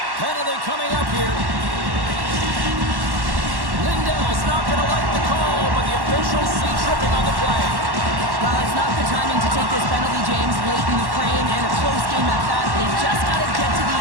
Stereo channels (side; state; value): left; late; 1.1 ms